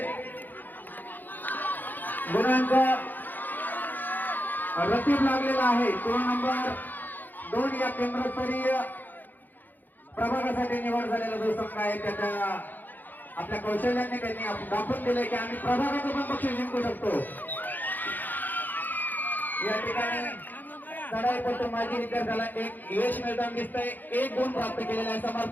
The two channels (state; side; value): late; right; 0.086 ms